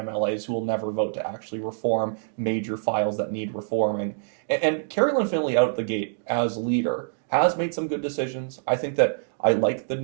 who will never vote to actually reform major files that need reforming. And Kerry-Lynne Findlay out the gate as leader has made some good decisions. I think that I like the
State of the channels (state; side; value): silent; left; digital silence